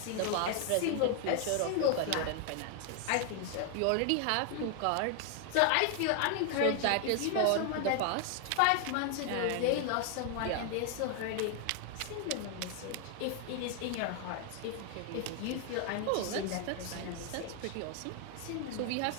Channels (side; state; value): both; different; correlation 0.00